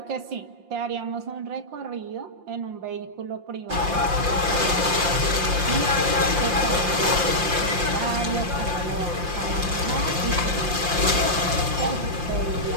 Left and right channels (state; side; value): late; left; 5.7 ms